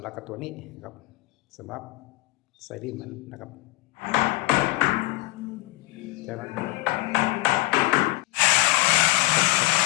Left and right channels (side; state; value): right; quieter; 20.3 dB